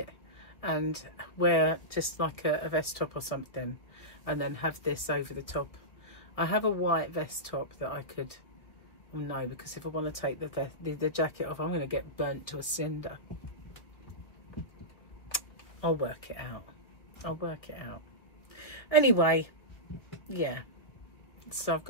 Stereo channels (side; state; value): right; late; 1.6 ms